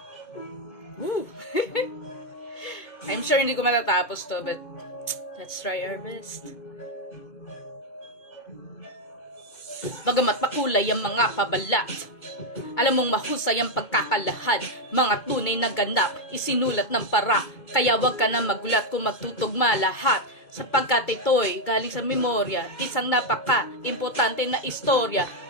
Woo! I'm sure hindi ko matatapos to, but let's try our best. Bagamat makulay ang mga pabalat, alam mong mahusay ang pagkakalahad, mga tunay na ganap, isinulat ng para. Kaya wag ka na magulat kung magtutugma lahat, sapagkat ito'y galing sa memorya, isang napaka-importante na istorya.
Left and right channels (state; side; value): late; right; 2.3 ms